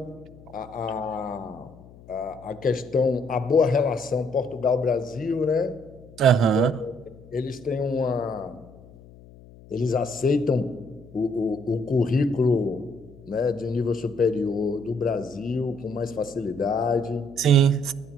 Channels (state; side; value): noise; left; hum, 21 dB below the sound